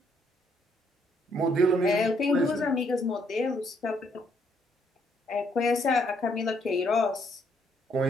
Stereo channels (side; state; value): both; normal; correlation 0.71